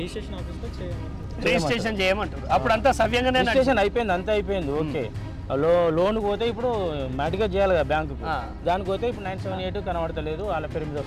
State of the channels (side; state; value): both; identical; correlation 1.00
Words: రిజిస్ట్రేషన్ చేయమంటారు. అప్పుడు అంతా సవ్యంగా రిజిస్ట్రేషన్ అయిపోయింది, అంతా అయిపోయింది. ఓకే, లోన్కి పోతే ఇప్పుడు మ్యాటిగా చేయాలి కదా బ్యాంకుకు. దానికి పోతే ఇప్పుడు 978 కనబడతలేదు, వాళ్ళ పేరు మీద